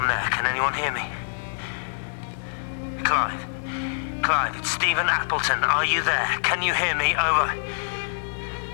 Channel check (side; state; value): right; silent; digital silence